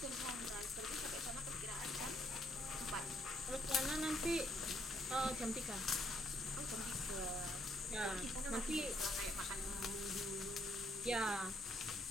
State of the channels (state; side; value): normal; both; correlation 0.71